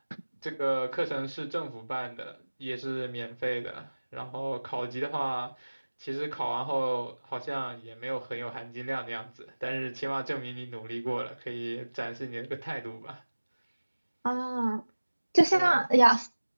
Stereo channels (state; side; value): inverted; both; correlation -1.00